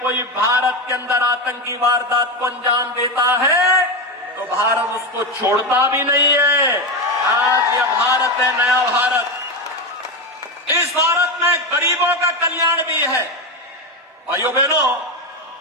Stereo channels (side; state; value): both; normal; correlation 0.14